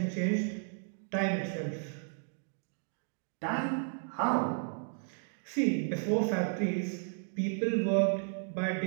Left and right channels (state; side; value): silent; left; 55 dB below the other